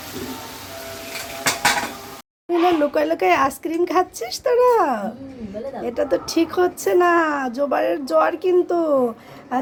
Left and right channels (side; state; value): both; identical; correlation 1.00